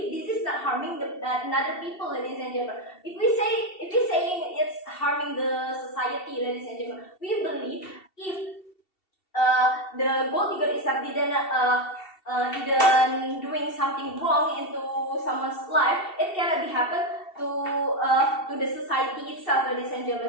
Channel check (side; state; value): right; late; 2.7 ms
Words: this is not harming another people, ladies and gentlemen. If we saying it's harming the society, ladies and gentlemen, we believe if the gold digger itself didn't doing something wrong into someone's life, it cannot be happen to the society itself, ladies and